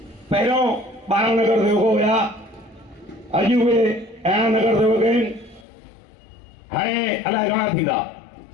पहिरियों 12 नगर सेवक हुया, अॼु उहे 11 नगर सेवक आहिनि, हाणे अलाए घणा थींदा।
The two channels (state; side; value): drops out; right; at 5.7 s